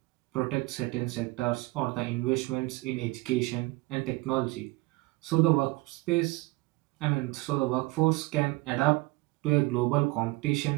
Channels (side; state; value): left; quieter; 22.1 dB